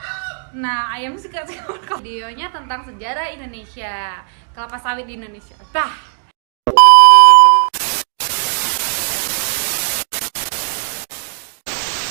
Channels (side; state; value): left; silent; digital silence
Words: Nah, ayam suka videonya tentang sejarah Indonesia, kelapa sawit di Indonesia. Dah.